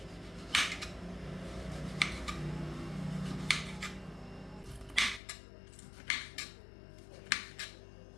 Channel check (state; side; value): drops out; right; at 5.2 s